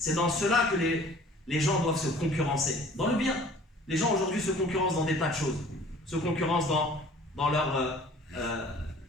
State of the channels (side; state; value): both; normal; correlation 0.50